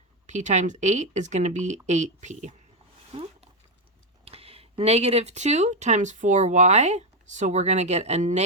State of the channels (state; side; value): normal; both; correlation 0.05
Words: p times 8 is going to be 8p. Negative 2 times 4y, so we're going to get a